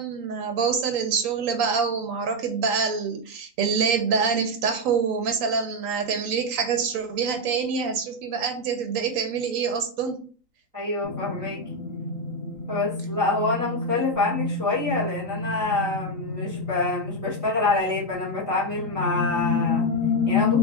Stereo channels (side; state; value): left; late; 3.9 ms